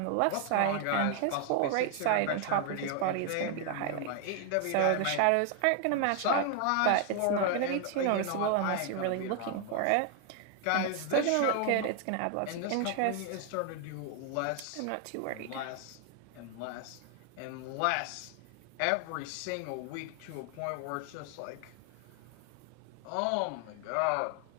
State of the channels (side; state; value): both; different; correlation 0.00